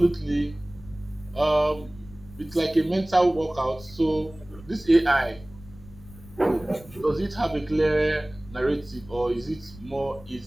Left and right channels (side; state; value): left; noise; rumble, 19 dB below the sound